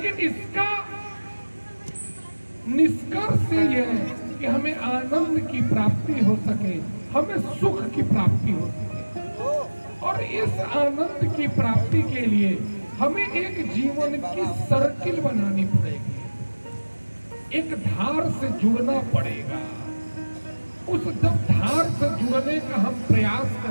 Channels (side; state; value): both; inverted; correlation -1.00